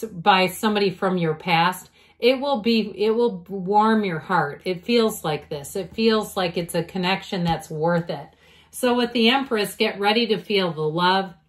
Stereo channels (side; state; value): both; identical; correlation 1.00